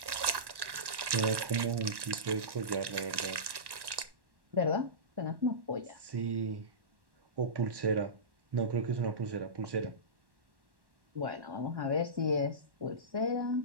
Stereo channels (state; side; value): late; left; 1.1 ms